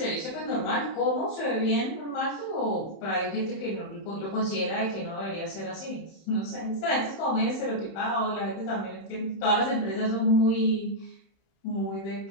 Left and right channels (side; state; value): right; late; 31 ms